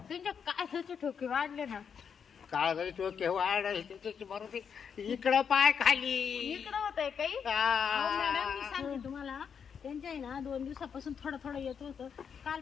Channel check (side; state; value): right; quieter; 7.0 dB